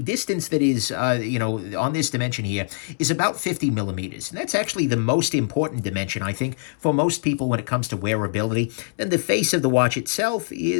that is, on this dimension here, is about 50 millimeters. And that's actually the most important dimension, I think, for most people when it comes to wearability. Then the face of the watch itself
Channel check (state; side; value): silent; right; 63 dB below the other